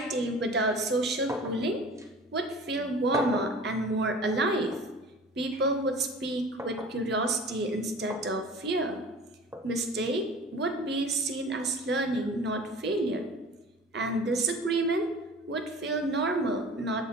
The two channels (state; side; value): normal; both; correlation 0.42